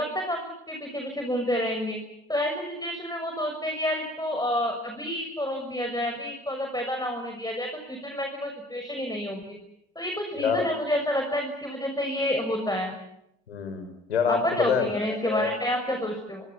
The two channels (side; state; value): both; normal; correlation 0.53